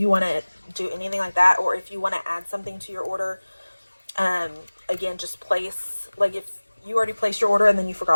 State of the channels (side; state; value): both; inverted; correlation -1.00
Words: want to do anything like that, or if you want to add something to your order, again, just place, like if you already placed your order and then you